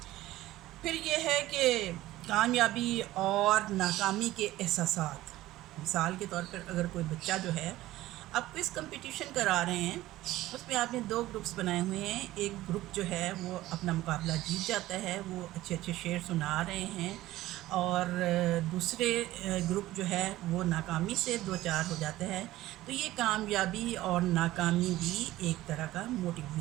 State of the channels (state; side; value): quieter; left; 16.1 dB